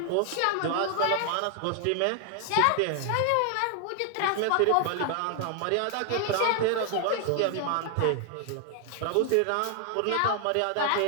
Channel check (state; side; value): different; both; correlation 0.00